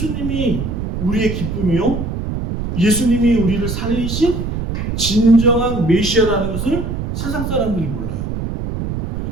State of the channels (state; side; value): noise; right; rumble, 3 dB below the sound